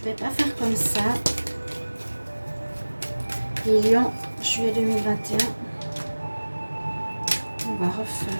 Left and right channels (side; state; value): both; inverted; correlation -1.00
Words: ne vais pas faire comme ça. Les lions, juillet 2021. On va